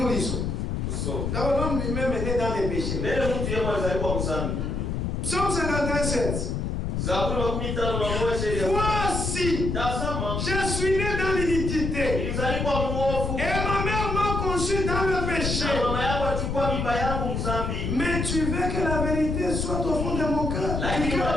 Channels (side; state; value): left; noise; rumble, 1 dB below the sound